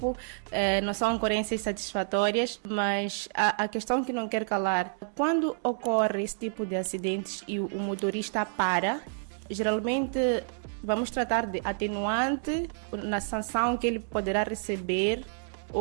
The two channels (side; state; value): left; silent; digital silence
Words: não são ocorrências satisfatórias, mas a questão que não quer calar, quando ocorre esse tipo de acidentes e o motorista para, geralmente vamos tratar de atenuante na sanção que ele poderá receber